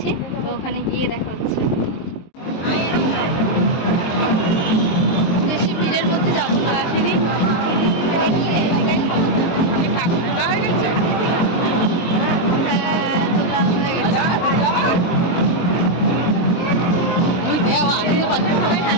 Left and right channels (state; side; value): late; right; 23 ms